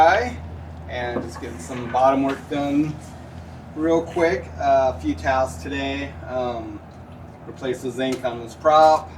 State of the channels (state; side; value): identical; both; correlation 1.00